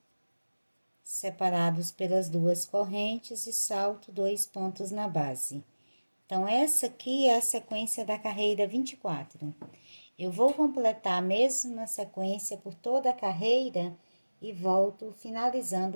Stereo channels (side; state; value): both; inverted; correlation -1.00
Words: separados pelas 2 correntes e salto 2 pontos na base. Então, essa aqui é a sequência da carreira 24. Eu vou completar a mesma sequência por toda a carreira e volto